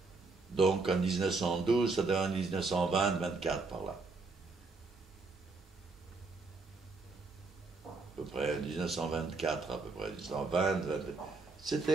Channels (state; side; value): quieter; left; 3.8 dB